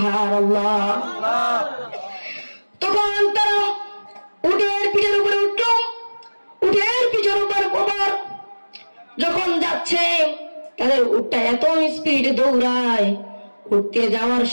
তখন তারা উটের পিঠের উপরে উঠল, উটের পিঠের উপর যখন যাচ্ছে তাদের উটটা এত স্পিডে দৌড়ায়, উঠতে যাওয়ার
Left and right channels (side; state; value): both; inverted; correlation -1.00